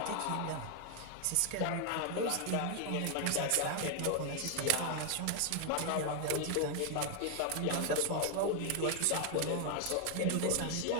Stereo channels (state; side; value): different; both; correlation 0.00